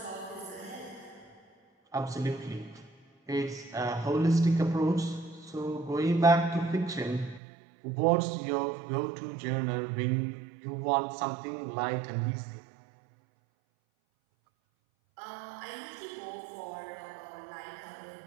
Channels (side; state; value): left; drops out; at 7.4 s